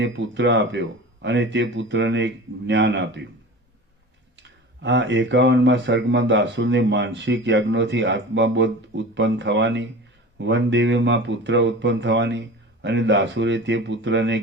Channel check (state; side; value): normal; both; correlation 0.35